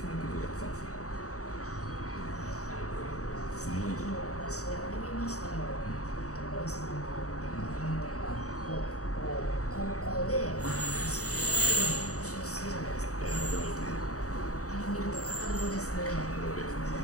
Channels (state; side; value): late; right; 0.66 ms